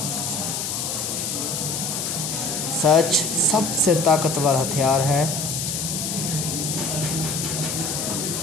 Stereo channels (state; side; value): noise; left; hiss, 2 dB below the sound